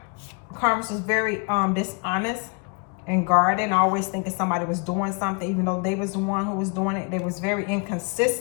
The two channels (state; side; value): quieter; right; 35.3 dB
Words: Karma was very dishonest and guarded, and always thinking somebody was doing something, even though they was the one who was doing it. They was very